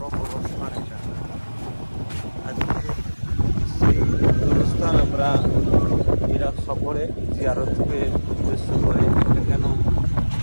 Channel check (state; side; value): inverted; both; correlation -1.00